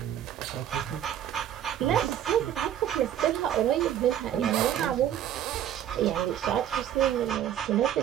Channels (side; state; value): left; quieter; 10.7 dB